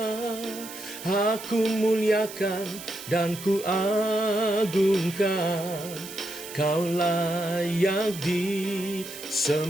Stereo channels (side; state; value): right; noise; hiss, 13 dB below the sound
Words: Aku muliakan dan ku agungkan, Kau layak